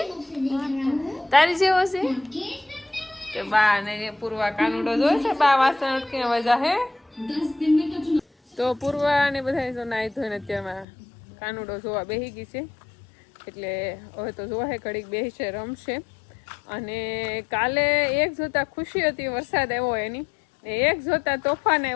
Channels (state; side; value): drops out; right; at 10.9 s